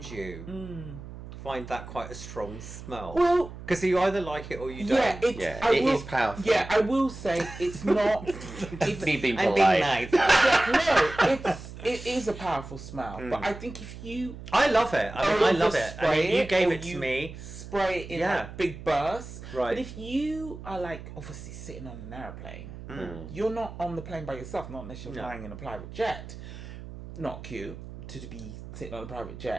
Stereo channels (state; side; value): noise; right; hum, 13 dB below the sound